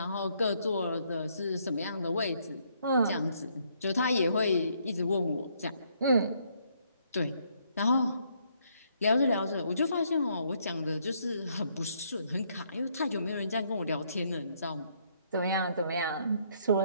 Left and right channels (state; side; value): inverted; both; correlation -0.70